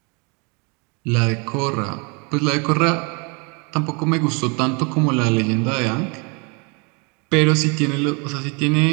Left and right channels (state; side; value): quieter; left; 32.1 dB